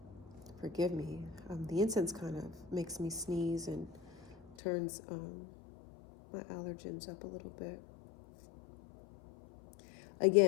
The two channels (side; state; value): right; drops out; at 4.5 s